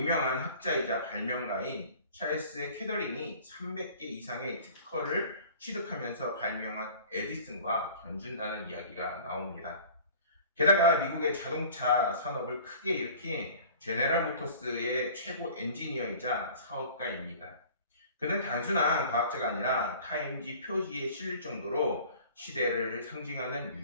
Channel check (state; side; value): inverted; both; correlation -0.46